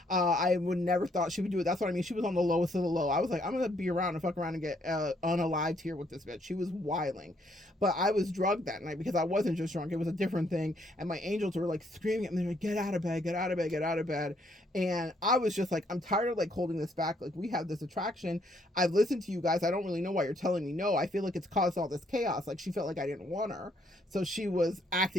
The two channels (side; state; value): both; normal; correlation 0.70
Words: I would never thought she would do it. That's what I mean. She was on the lowest of the low. I was like, I'm gonna be around and fuck around and get unalived here with this bitch. She was wiling. But I was drugged that night because I wasn't just drunk. It was a different thing. And my angels were like screaming at me, like, get out of bed, get out of bed, get out of bed. And I was just like, I'm tired of like holding this back. Like, we have this attraction. I've listened to you guys. I don't really know why you're telling me no. I feel like it's caused all this chaos. Like, she felt like I didn't want her. So she was